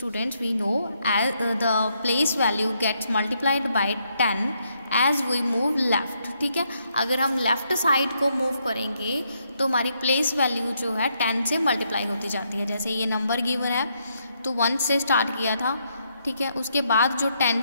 we know as the place value gets multiplied by 10 as we move left. ठीक है, अगर हम लेफ्ट साइड को मूव करेंगे तो हमारी प्लेस वैल्यू जो है 10 से मल्टीप्लाई होती जाती है. जैसे ये नंबर गिवन है तो 1 से स्टार्ट किया था, ठीक है, उसके बाद जो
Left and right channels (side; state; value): both; inverted; correlation -0.76